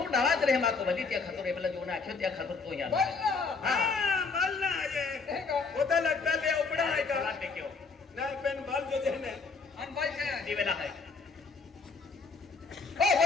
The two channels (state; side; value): quieter; right; 4.6 dB